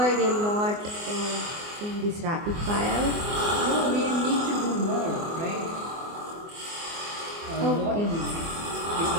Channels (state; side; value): late; left; 24 ms